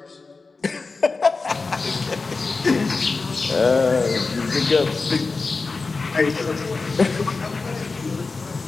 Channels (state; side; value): quieter; right; 4.0 dB